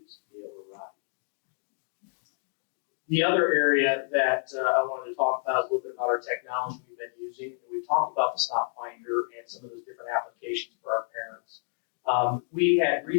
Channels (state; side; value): silent; right; 59 dB below the other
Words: to be able to ride. The other area that I wanted to talk about is a little bit about our technology we've been using. We talked about the Stop Finder and some of those different applications for our parents. We had